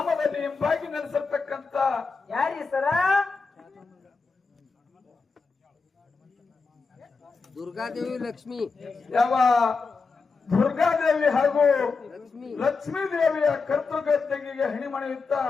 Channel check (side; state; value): right; quieter; 4.5 dB